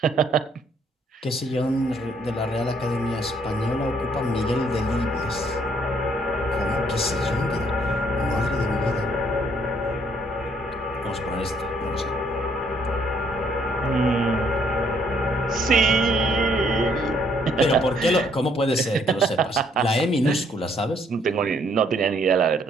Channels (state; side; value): normal; both; correlation 0.67